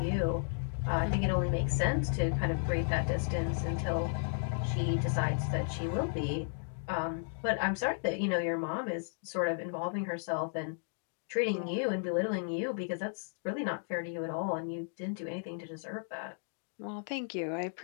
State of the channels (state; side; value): silent; right; digital silence